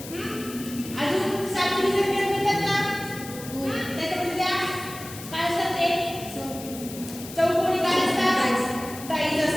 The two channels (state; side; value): noise; left; hiss, 13 dB below the sound